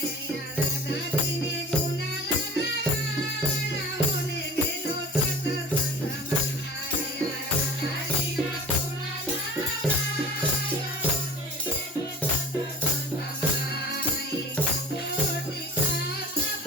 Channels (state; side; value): normal; both; correlation 0.44